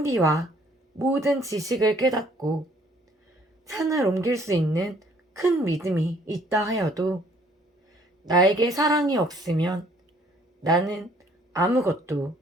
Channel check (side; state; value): both; normal; correlation 0.61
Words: 모든 지식을 깨닫고 산을 옮길 수 있는 큰 믿음이 있다 하여도 나에게 사랑이 없으면 나는 아무것도